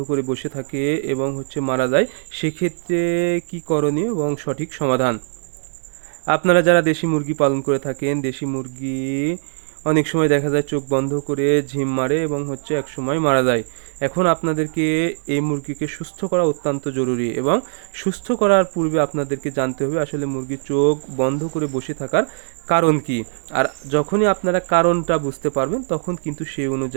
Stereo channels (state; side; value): silent; left; digital silence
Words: করে বসে থাকে এবং মারা যায়, সেক্ষেত্রে কি করণীয় এবং সঠিক সমাধান। আপনারা যারা দেশি মুরগি পালন করে থাকেন, দেশি মুরগি অনেক সময় দেখা যায় চোখ বন্ধ করে ঝিম মারে এবং এক সময় মারা যায়। এখন আপনাদেরকে এই মুরগিকে সুস্থ করা অত্যন্ত জরুরি, এবং সুস্থ করার পূর্বে আপনাদেরকে জানতে হবে আসলে মুরগির চোখ বন্ধ করে বসে থাকার কারণ কি। আর যখনই আপনারা কারণটা বুঝতে পারবেন, তখন কিন্তু সেই